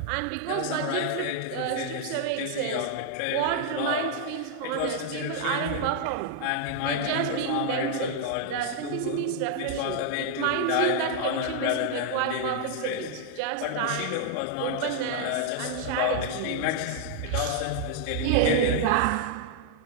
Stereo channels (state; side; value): different; both; correlation 0.00